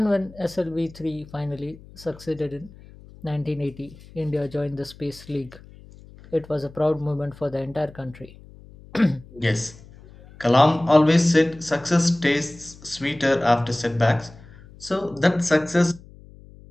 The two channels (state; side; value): noise; left; hum, 21 dB below the sound